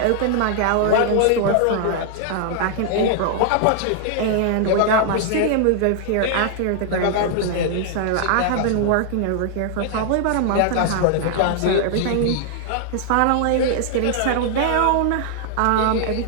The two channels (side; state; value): both; different; correlation 0.00